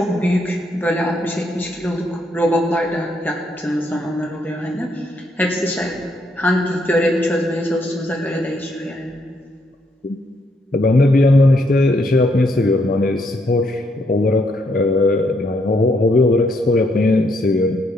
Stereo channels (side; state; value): both; normal; correlation 0.74